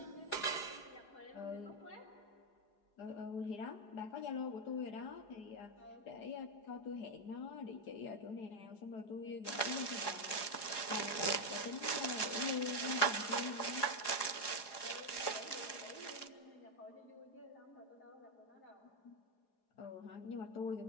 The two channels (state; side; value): late; right; 4.8 ms